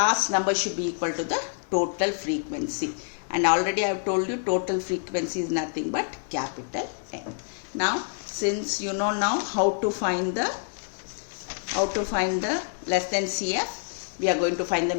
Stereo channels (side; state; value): right; silent; digital silence